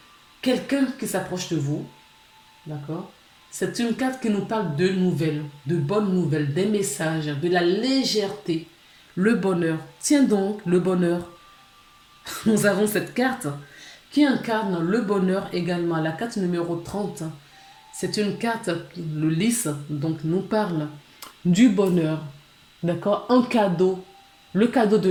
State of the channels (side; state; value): both; identical; correlation 1.00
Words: quelqu'un qui s'approche de vous. D'accord? C'est une carte qui nous parle de nouvelles, de bonnes nouvelles, des messages, de la légèreté, le bonheur. Tiens donc, le bonheur. Nous avons cette carte qui incarne le bonheur également. La carte numéro 30, c'est une carte, le lys, donc nous parle du bonheur. D'accord? Un cadeau, le cadeau de